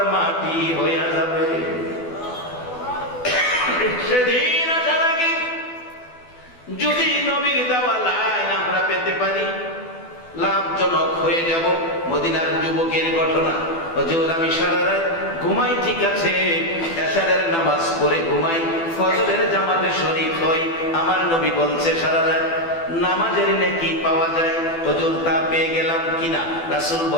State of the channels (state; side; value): late; right; 12 ms